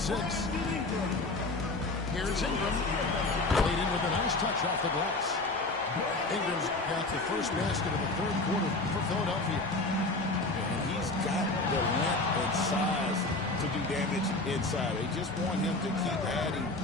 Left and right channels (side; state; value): right; quieter; 3.1 dB